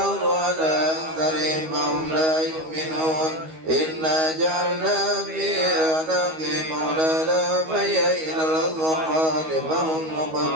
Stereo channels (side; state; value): left; late; 13 ms